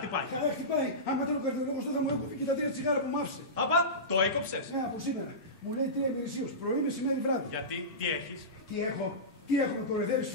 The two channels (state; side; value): normal; both; correlation -0.19